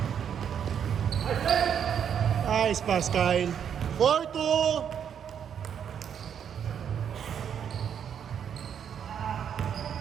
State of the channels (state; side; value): quieter; left; 8.3 dB